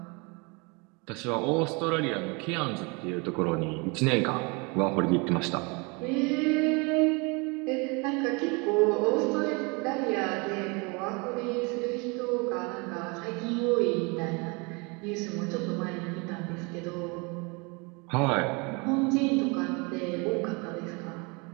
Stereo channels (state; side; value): quieter; left; 29.8 dB